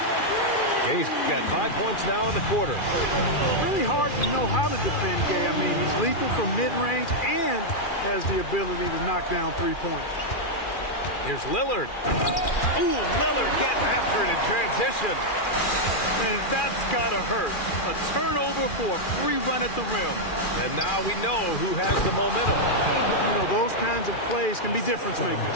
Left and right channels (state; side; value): late; right; 2.4 ms